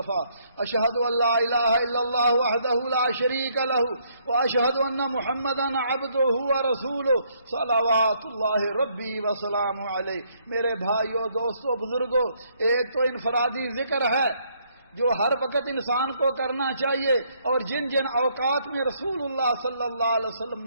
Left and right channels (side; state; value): both; inverted; correlation -0.69